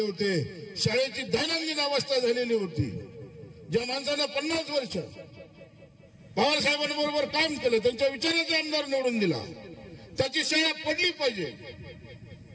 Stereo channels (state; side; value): identical; both; correlation 1.00